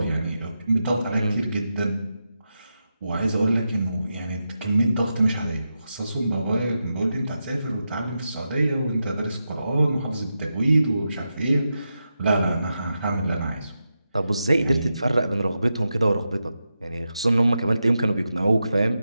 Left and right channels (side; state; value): both; inverted; correlation -0.88